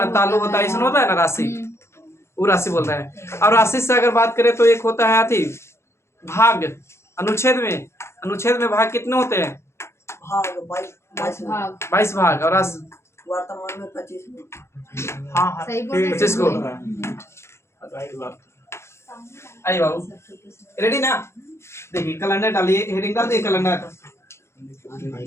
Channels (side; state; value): right; late; 0.13 ms